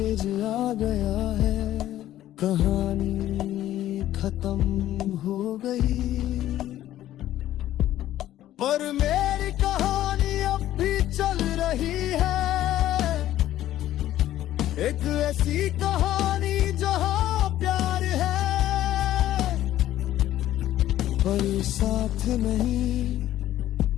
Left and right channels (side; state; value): right; quieter; 13.3 dB